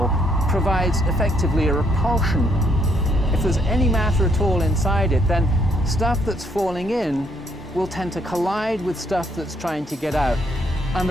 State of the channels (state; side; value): normal; both; correlation 0.70